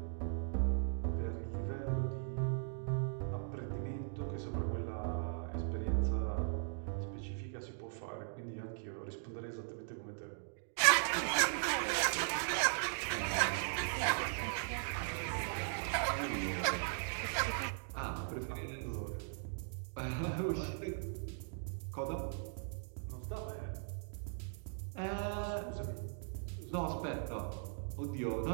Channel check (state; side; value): silent; left; digital silence